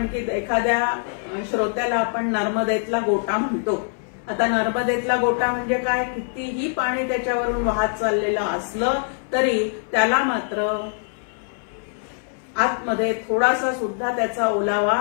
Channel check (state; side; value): silent; right; 63 dB below the other